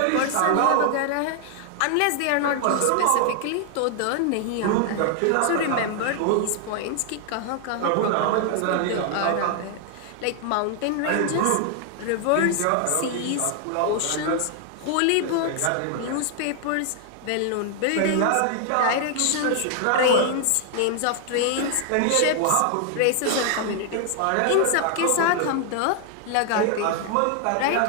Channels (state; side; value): different; both; correlation 0.00